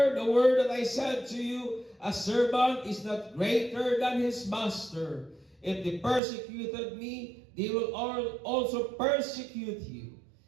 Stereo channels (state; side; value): drops out; left; at 6.2 s